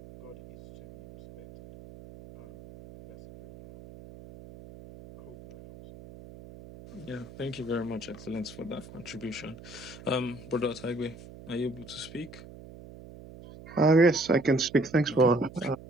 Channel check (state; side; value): noise; right; hum, 17 dB below the sound